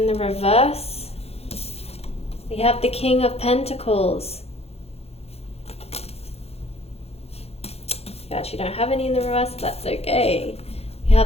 the reverse. We have the King of Pentacles. You actually don't have any in the reverse, that's okay. We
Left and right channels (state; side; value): late; right; 0.29 ms